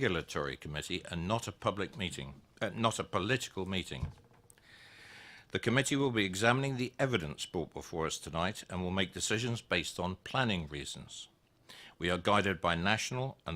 committee and not a public meeting, not a political meeting. The committee will be examining the evidence brought before us tonight and will make decisions based on planning reasons. We are guided by national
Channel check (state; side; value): identical; both; correlation 1.00